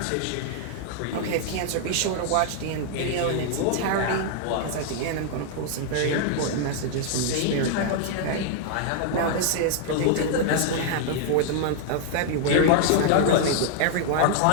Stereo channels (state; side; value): different; both; correlation 0.00